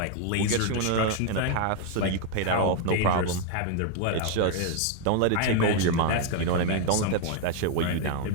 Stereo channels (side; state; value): both; different; correlation 0.00